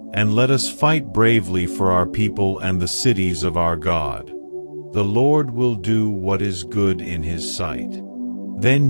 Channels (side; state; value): both; inverted; correlation -1.00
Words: and let us fight bravely for our people and the cities of our God. The Lord will do what is good in his sight."